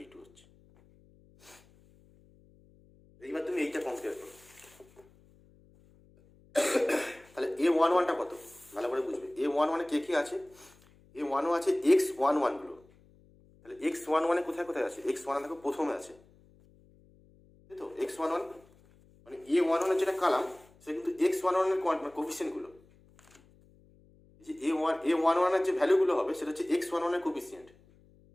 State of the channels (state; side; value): noise; left; hum, 28 dB below the sound